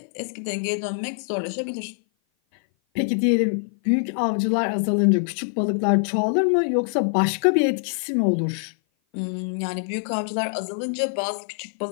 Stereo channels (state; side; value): silent; right; 56 dB below the other